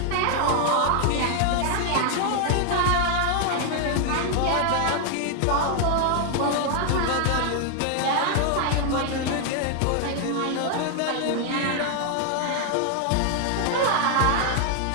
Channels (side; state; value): both; different; correlation 0.00